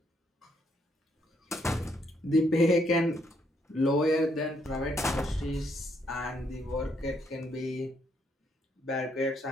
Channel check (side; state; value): both; normal; correlation 0.73